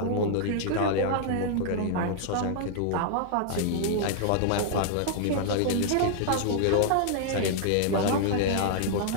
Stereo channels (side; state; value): both; different; correlation -0.01